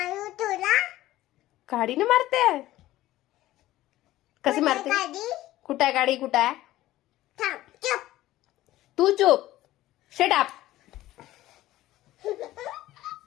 तुला गाडीने मारते? कशी मारते? गाडी कुठं आहे गाडी? कुठं आहे? थांब चुप तू चुप. Shut up.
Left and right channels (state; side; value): quieter; right; 15.6 dB